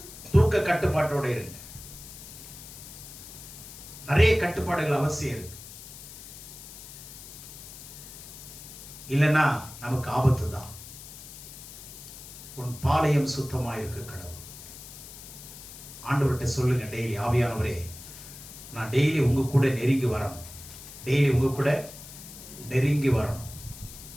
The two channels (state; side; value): noise; left; hiss, 15 dB below the sound